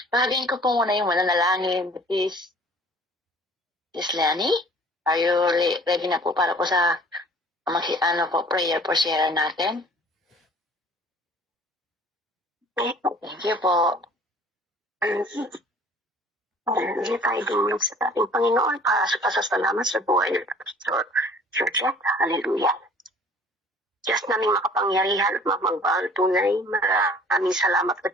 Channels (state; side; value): normal; both; correlation 0.51